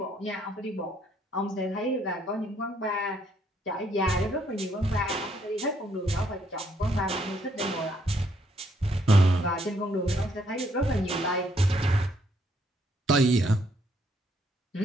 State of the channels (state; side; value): normal; both; correlation 0.70